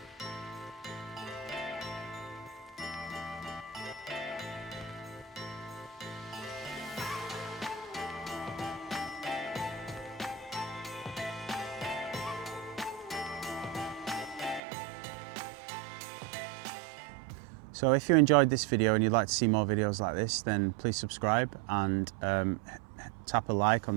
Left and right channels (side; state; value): left; drops out; at 14.6 s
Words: So if you enjoyed this video and you'd like to see more videos like this, then please subscribe and tap a like